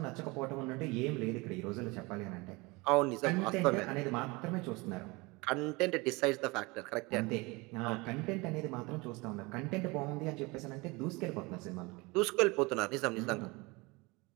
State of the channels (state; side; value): quieter; left; 24.9 dB